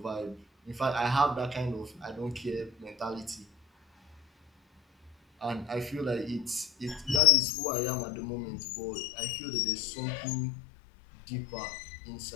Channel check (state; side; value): drops out; right; at 7.2 s